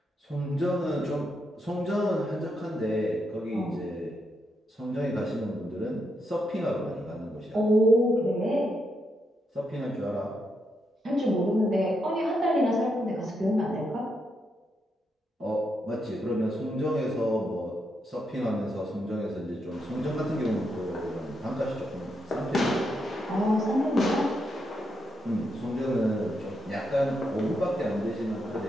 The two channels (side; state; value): both; normal; correlation 0.81